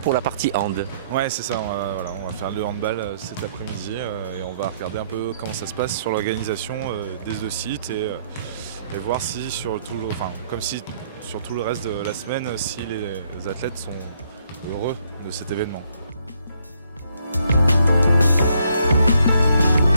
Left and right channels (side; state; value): both; inverted; correlation -0.69